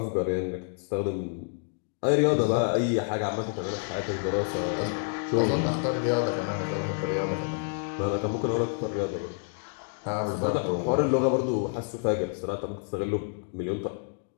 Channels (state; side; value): silent; right; digital silence